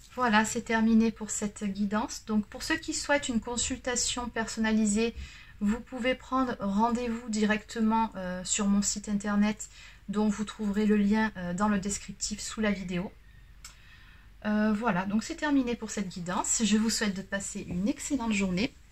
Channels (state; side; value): identical; both; correlation 1.00